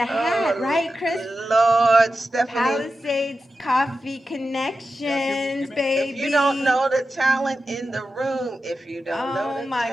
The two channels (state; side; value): normal; both; correlation 0.91